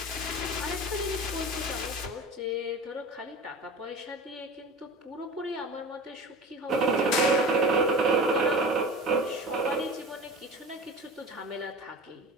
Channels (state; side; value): normal; both; correlation 0.34